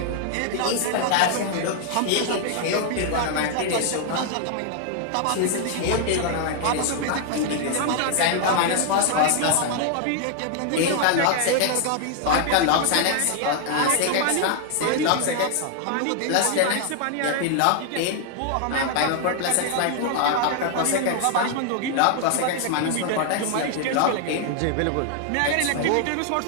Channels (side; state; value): both; different; correlation 0.00